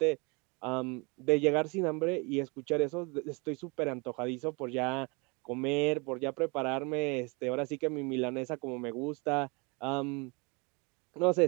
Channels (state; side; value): quieter; left; 29.9 dB